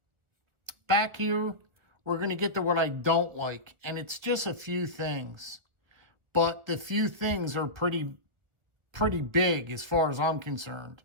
Back here, we're going to get to what I don't like. And it's just a few things. But the few things are pretty big as far as I'm concerned.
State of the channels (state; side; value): late; left; 1.6 ms